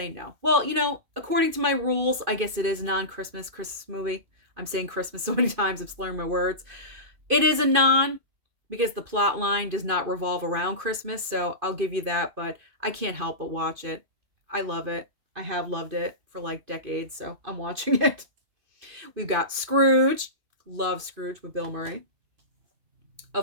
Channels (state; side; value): late; left; 2.5 ms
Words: no. Well, according to my rules, I guess it is a non-Christmas Christmas movie. I'm saying Christmas so many times, I'm slurring my words. It is a non because the plot line does not revolve around Christmas, so I'll give you that, but I can't help but watch it. I love it. I have loved it for like decades, so I'm watching it. We've got Scrooge. Love Scrooge with Bill Murray.